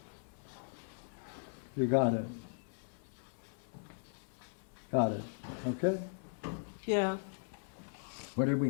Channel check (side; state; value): right; silent; 52 dB below the other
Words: You got it. Got it. Okay. Yeah. What did we